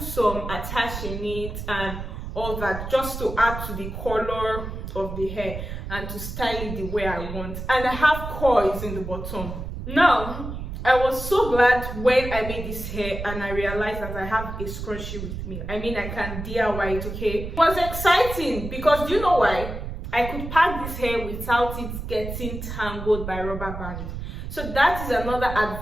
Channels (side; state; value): right; noise; rumble, 7 dB below the sound